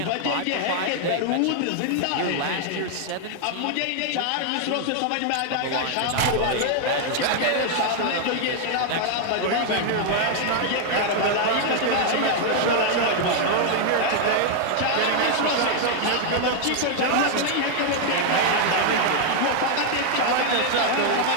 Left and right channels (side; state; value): both; different; correlation 0.00